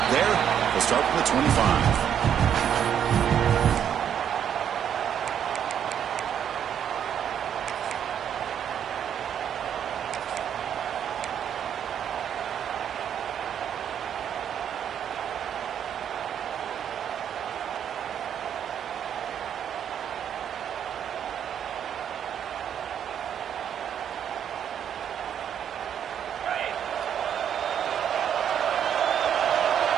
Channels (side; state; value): left; quieter; 9.0 dB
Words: there. They'll start from the 25.